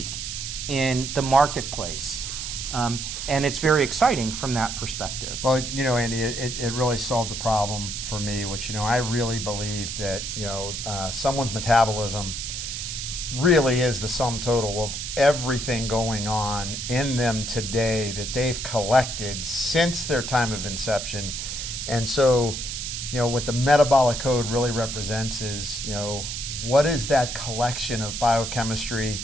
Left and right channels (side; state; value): right; noise; hiss, 5 dB below the sound